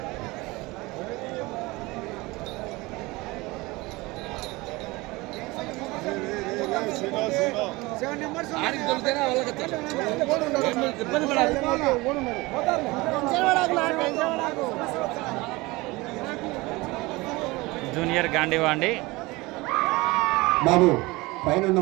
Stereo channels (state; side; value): quieter; left; 22.4 dB